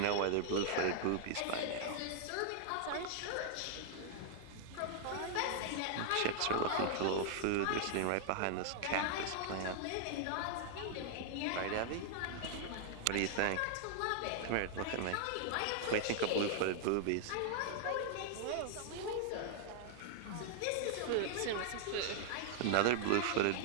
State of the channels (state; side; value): different; both; correlation -0.01